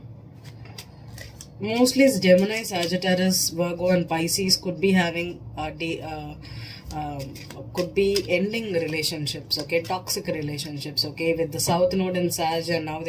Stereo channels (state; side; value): identical; both; correlation 1.00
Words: mostly it's Gemini, Sagittarius, Virgo, and Pisces could be having could be ending relationships. Okay, toxic relationships. Okay, with the South Node in Sag and now